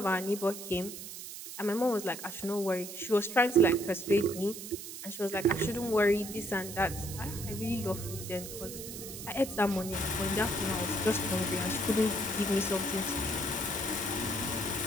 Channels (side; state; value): right; noise; hiss, 10 dB below the sound